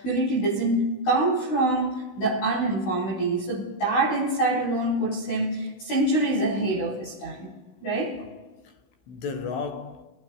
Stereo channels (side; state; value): right; late; 16 ms